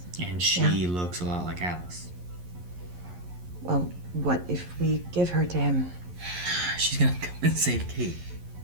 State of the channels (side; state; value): left; late; 11 ms